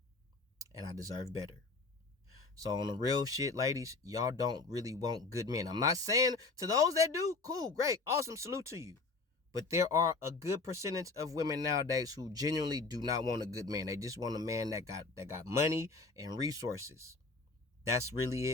And I deserve better. So on the real shit, ladies, y'all don't really want good men. I'm not saying to those that do, cool, great, awesome, salute to you. But there are a good percentage of women nowadays who genuinely do not want a good man. They just want a man that got money and resources. That's really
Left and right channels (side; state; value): right; quieter; 3.8 dB